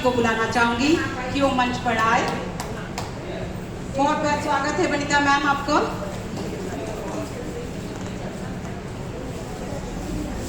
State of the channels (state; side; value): identical; both; correlation 1.00